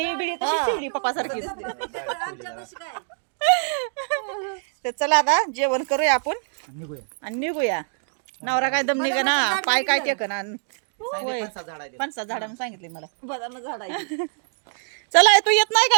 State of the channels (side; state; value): left; silent; digital silence